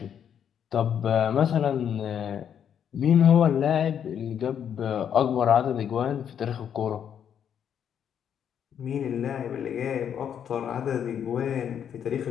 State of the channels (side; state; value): right; quieter; 8.7 dB